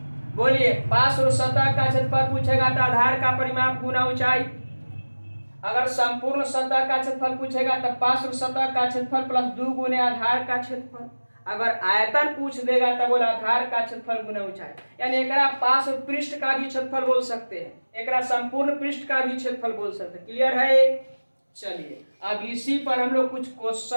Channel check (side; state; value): both; inverted; correlation -1.00